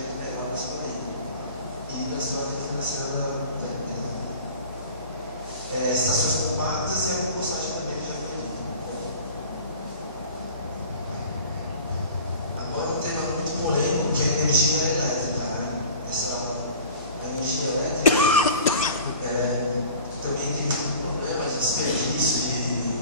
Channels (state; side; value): inverted; both; correlation -0.41